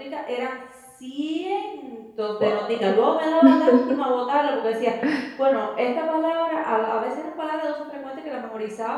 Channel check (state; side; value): identical; both; correlation 1.00